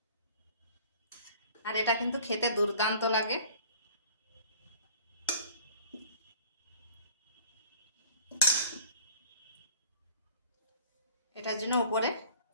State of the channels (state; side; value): inverted; both; correlation -0.49